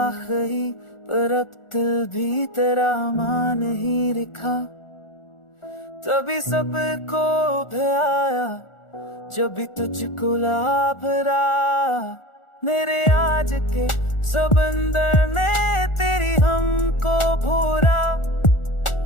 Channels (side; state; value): right; late; 1.4 ms